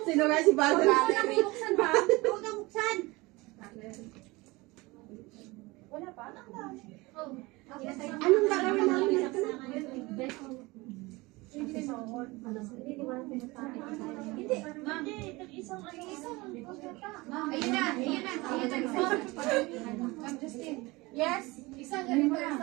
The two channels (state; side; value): quieter; left; 22.8 dB